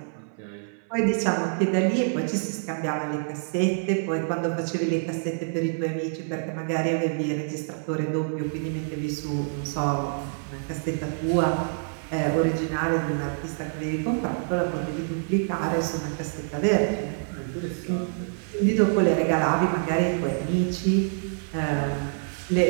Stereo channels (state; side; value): silent; left; 61 dB below the other